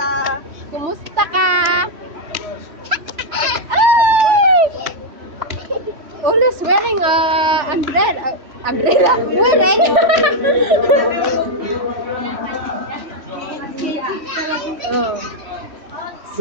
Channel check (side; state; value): left; late; 3.1 ms